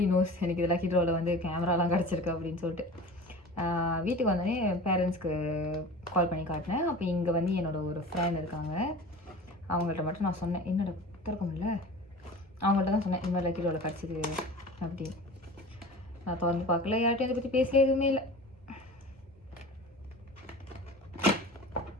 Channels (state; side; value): normal; both; correlation 0.38